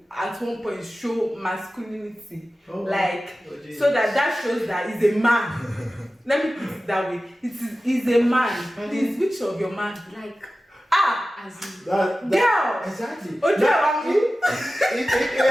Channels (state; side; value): normal; both; correlation 0.95